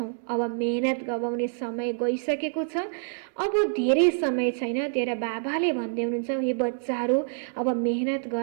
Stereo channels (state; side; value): silent; left; digital silence